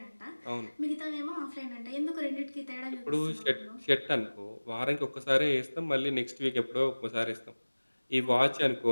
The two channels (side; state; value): both; inverted; correlation -1.00